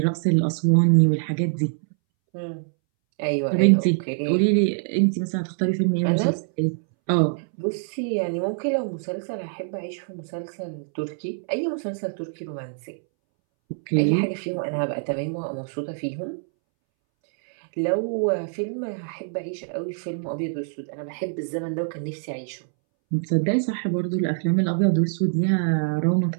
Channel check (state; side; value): silent; left; 62 dB below the other